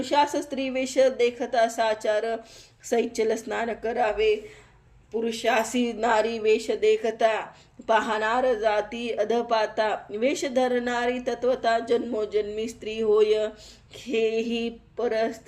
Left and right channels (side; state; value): both; identical; correlation 1.00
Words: स्त्री वेश देखता साचार सैचल स्नान करावे पुरुषासी नारी वेश देखता पाहणार जाती अधपाता वेश धरणारी तत्वता जन्मोजन्मी स्त्री होय हेही